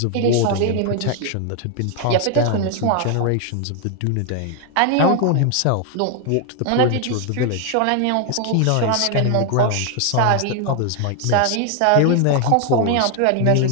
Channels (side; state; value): both; different; correlation 0.00